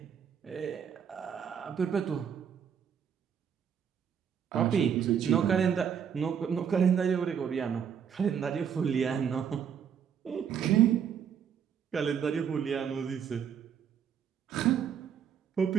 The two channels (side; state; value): left; quieter; 8.0 dB